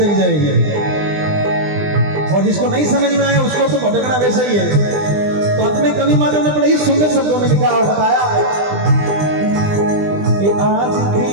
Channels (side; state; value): left; late; 20 ms